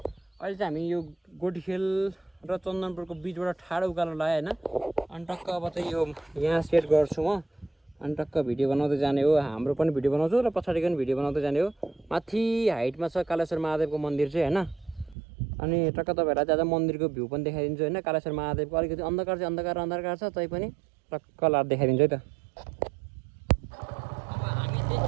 अहिले चाहिँ हामी यो गोटीखेल र चन्दनपुरको बिचबाट ठाडो उकालो लाग्यो हैन। अनि टक्क अब चाहिँ यो यहाँ सेट गर्छु म। अनि टक्क भिडियो बनाउँदै जाने हो। हाम्रो पनि भिडियो बनाउँछु र पछाडिको पनि भिडियो बनाउँदै जाने हो। माथि हाइटमा छ कालेश्वर महादेवको मन्दिर चाहिँ हैन। अनि टक्क तपाईहरुलाई चाहिँ आज मन्दिरको भ्यू पनि देखाइदिन्छु हैन। कालेश्वर महादेवको अलिकति अन्धकार छ तै पनि टक्क लाएर देखाइदिन्छु है त।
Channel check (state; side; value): drops out; left; at 15.2 s